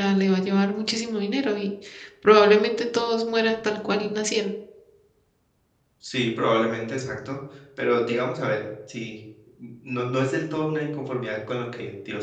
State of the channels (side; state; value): both; identical; correlation 1.00